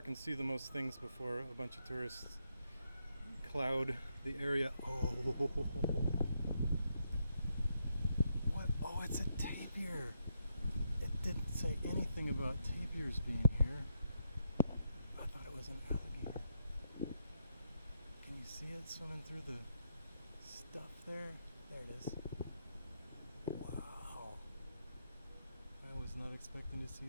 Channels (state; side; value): inverted; both; correlation -0.79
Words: and see the most things before a bunch of tourists cloud the area. Oh, what? Oh, it's a tapir. It didn't say anything about tapirs being here. I thought it was an alligator. Can you see it swimming through the stuff there? There it is. Wow. I was not expecting to see